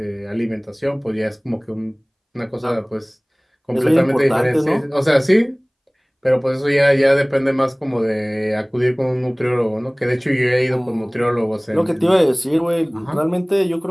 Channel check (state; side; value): identical; both; correlation 1.00